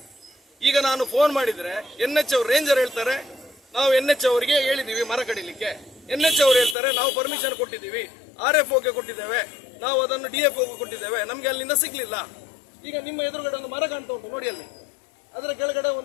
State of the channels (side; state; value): right; drops out; at 6.8 s